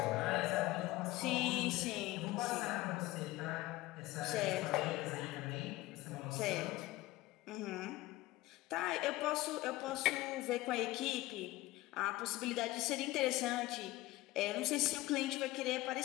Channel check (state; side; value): quieter; right; 18.2 dB